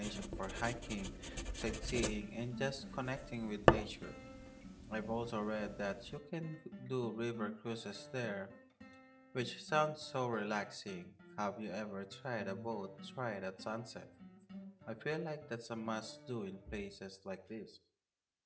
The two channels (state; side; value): identical; both; correlation 1.00